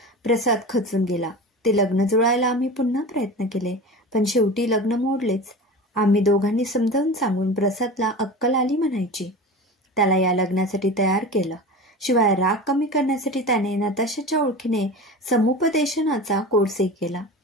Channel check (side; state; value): both; normal; correlation 0.31